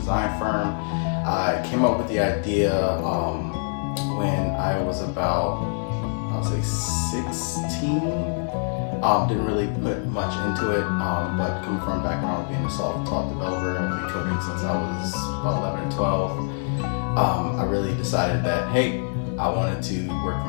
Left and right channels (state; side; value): silent; right; 62 dB below the other